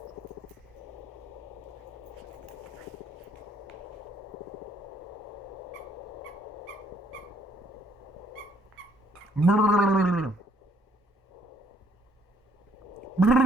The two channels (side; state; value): both; normal; correlation 0.65